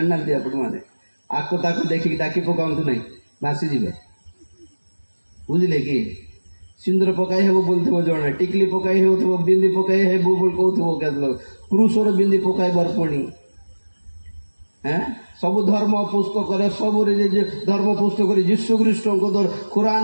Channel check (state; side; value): inverted; both; correlation -1.00